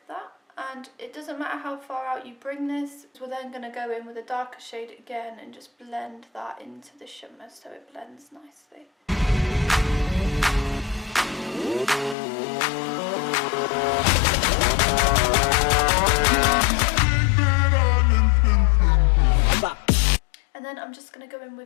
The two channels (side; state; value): right; drops out; at 12.2 s